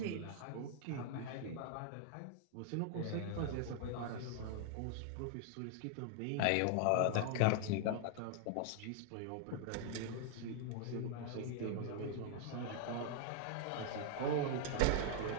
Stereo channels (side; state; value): both; different; correlation 0.00